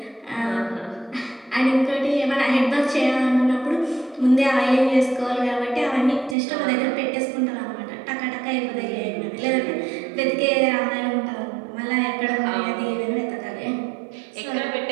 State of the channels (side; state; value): left; drops out; at 6.4 s